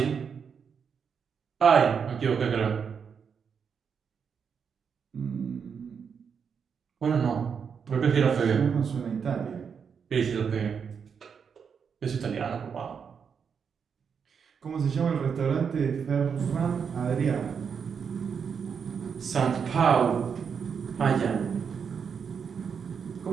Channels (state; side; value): quieter; left; 6.6 dB